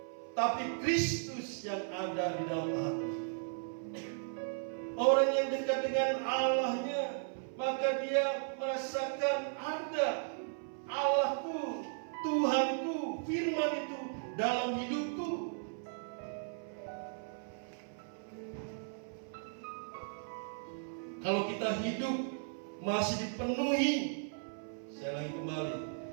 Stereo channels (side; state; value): left; silent; 54 dB below the other